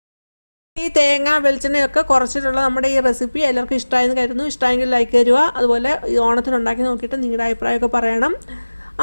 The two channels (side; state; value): both; inverted; correlation -1.00